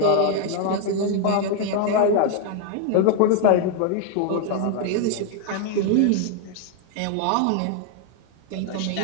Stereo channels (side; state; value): both; different; correlation 0.00